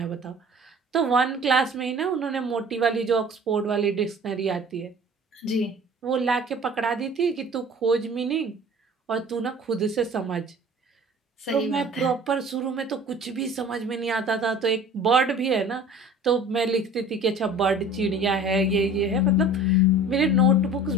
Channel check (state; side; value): normal; both; correlation 0.44